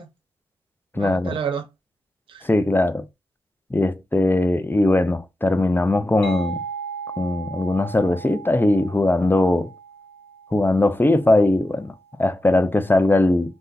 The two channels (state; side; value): normal; both; correlation 0.90